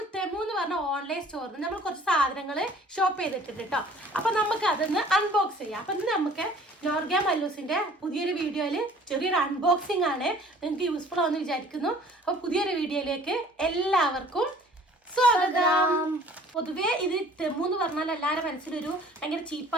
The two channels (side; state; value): both; normal; correlation 0.52